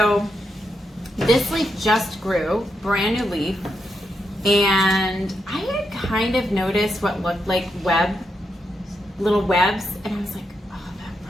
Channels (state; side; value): normal; both; correlation 0.83